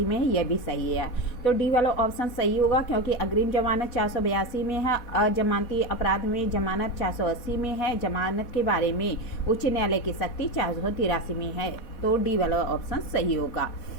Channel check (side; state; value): right; late; 4.1 ms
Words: में है, ये भी सही है। तो डी वाला ऑप्शन सही होगा, क्योंकि अग्रिम जमानत 482 में है, अजमानती अपराध में जमानत 480 में है, जमानत के बारे में उच्च न्यायालय की सख्ती 483 में है। तो डी वाला ऑप्शन सही होगा।